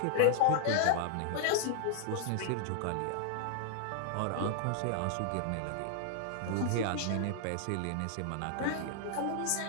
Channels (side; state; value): both; different; correlation -0.01